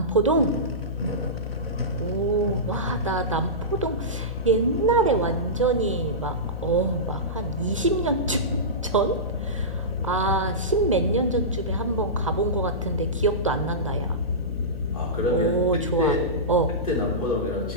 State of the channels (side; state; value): left; noise; hum, 7 dB below the sound